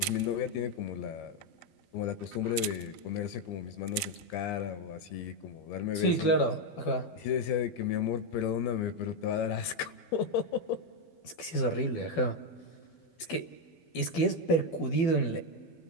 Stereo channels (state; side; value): late; right; 12 ms